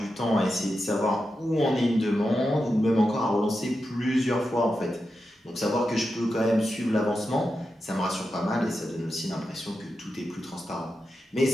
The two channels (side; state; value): both; normal; correlation 0.89